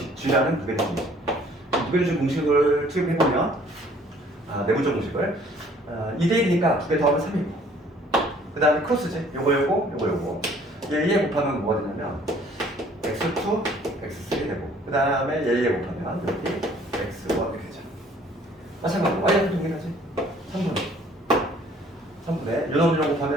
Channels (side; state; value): both; normal; correlation 0.57